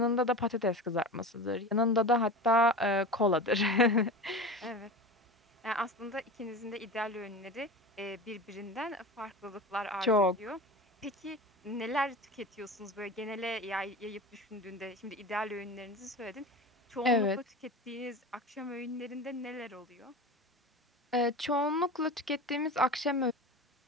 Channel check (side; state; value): both; normal; correlation 0.31